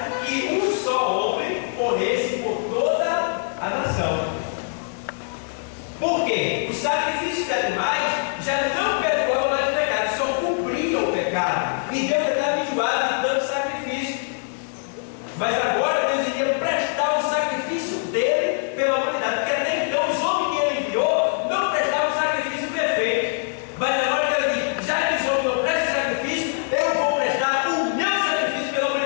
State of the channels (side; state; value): right; silent; digital silence